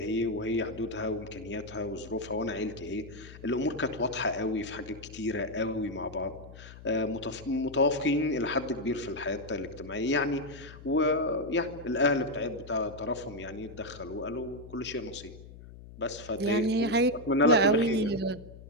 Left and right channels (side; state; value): left; noise; hum, 16 dB below the sound